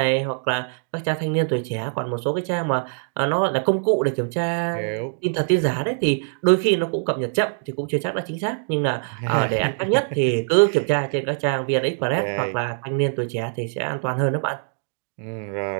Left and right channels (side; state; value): left; silent; digital silence